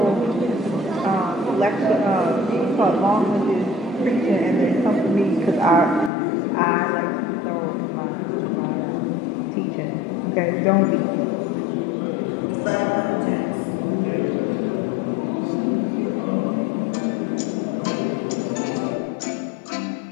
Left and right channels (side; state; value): right; drops out; at 6.1 s